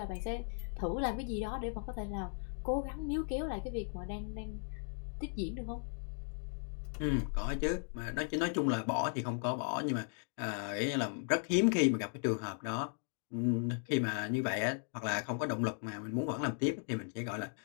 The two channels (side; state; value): right; silent; 53 dB below the other